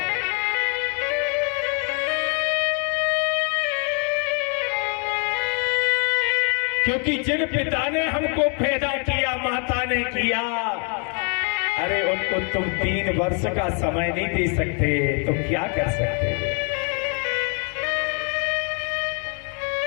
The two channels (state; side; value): quieter; right; 38.6 dB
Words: क्योंकि जिन पिता ने हमको पैदा किया, माता ने किया, अरे उनको तुम 3 वर्ष का समय नहीं दे सकते तो क्या कर सकते?